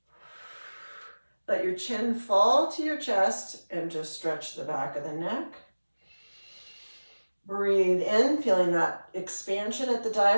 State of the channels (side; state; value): both; inverted; correlation -1.00